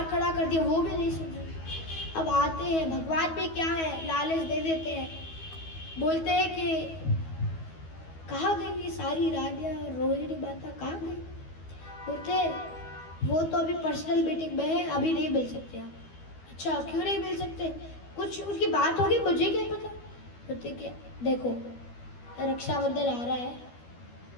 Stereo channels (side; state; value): right; late; 12 ms